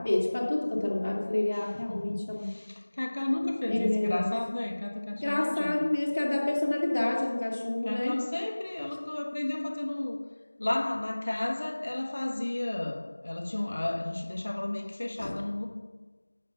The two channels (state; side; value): inverted; both; correlation -1.00